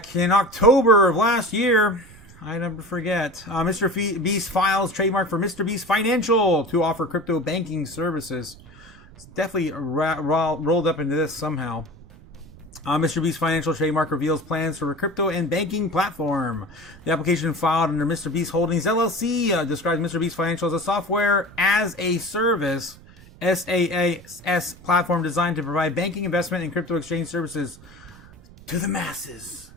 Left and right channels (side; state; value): right; noise; rumble, 22 dB below the sound